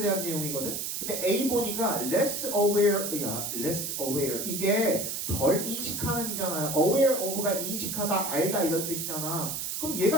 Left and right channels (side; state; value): right; noise; hiss, 3 dB below the sound